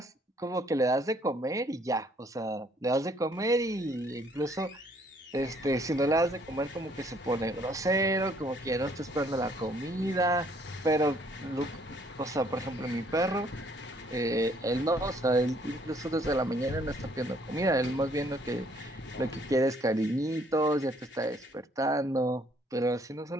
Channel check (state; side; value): normal; both; correlation 0.64